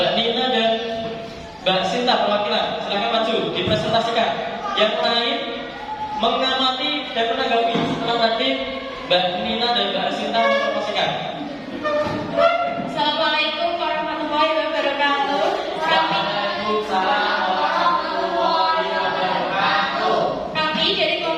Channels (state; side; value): identical; both; correlation 1.00